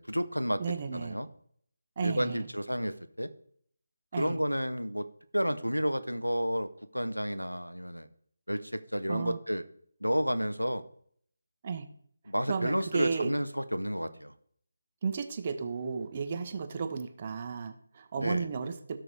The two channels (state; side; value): inverted; both; correlation -0.95